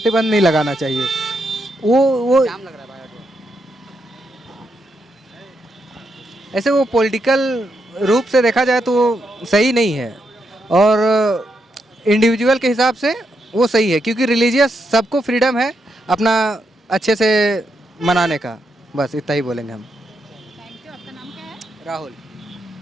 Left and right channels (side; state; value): both; normal; correlation 0.81